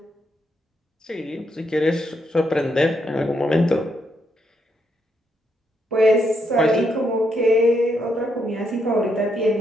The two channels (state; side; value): normal; both; correlation 0.78